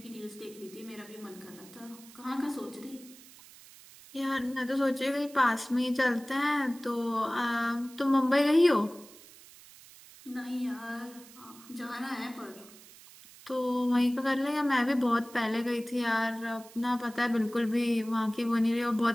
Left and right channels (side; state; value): right; noise; hiss, 21 dB below the sound